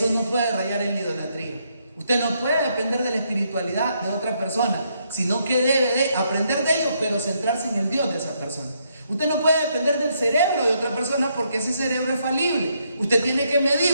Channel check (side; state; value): both; inverted; correlation -0.75